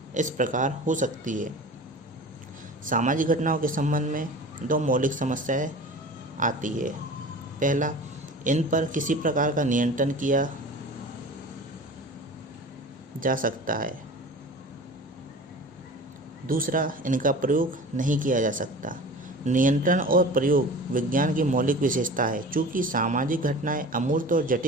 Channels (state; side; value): normal; both; correlation 0.38